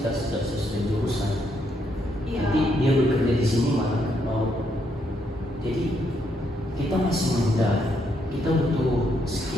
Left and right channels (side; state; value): both; normal; correlation 0.76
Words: tidak sesuai jurusan. Iya. Jadi dia bekerja di sini malah mau. Jadi kita masih muda, kita butuh